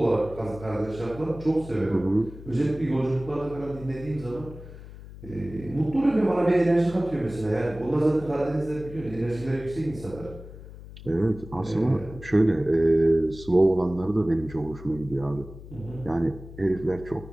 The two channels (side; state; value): left; noise; hum, 15 dB below the sound